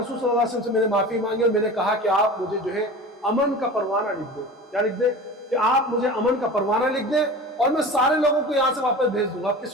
صلی اللہ علیہ وسلم سے میں نے معافی مانگی، اور میں نے کہا کہ آپ مجھے جو ہے امن کا پروانہ لکھ دیں۔ کیا لکھ دیں؟ کہ آپ مجھے امن کا پروانہ لکھ دیں، اور میں سارے لوگوں کو یہاں سے واپس بھیج دوں گا،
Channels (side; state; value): both; normal; correlation 0.35